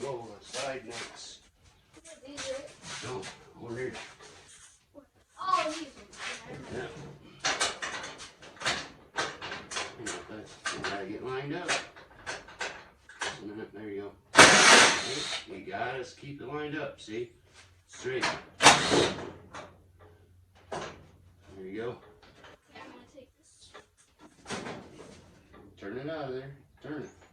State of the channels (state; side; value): identical; both; correlation 1.00